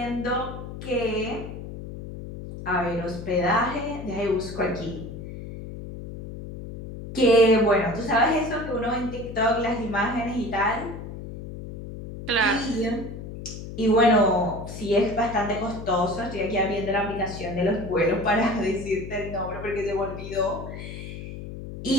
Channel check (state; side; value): noise; left; hum, 10 dB below the sound